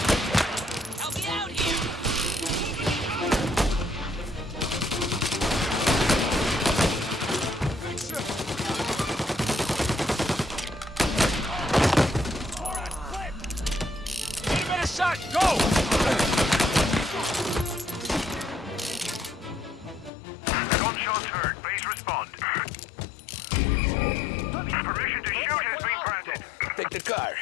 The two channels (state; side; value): drops out; right; at 20.1 s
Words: Help me out here! Give it a shot, go! Gunshots heard. Please respond. Permission to shoot has been granted. Take the car.